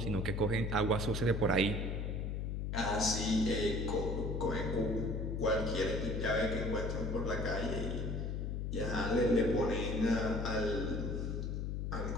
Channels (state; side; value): noise; left; hum, 2 dB below the sound